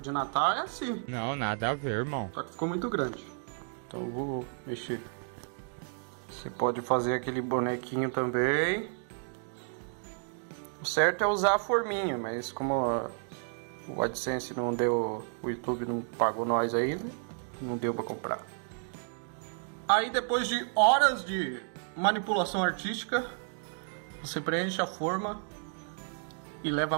de Natal é assim. Não, nada a ver, irmão. Só que ficou muito grande. Então eu vou mexer. Você pode fazer aquele bonequinho também. O certo é usar a forminha, mas como o AdSense não deu, o YouTube não pagou nós ainda, não deu pra comprar. Aí depois de horas de manipulação artística, você preenche a forma e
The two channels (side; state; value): left; silent; 57 dB below the other